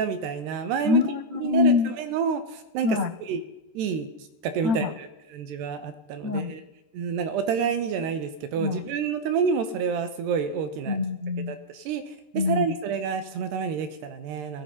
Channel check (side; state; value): left; late; 13 ms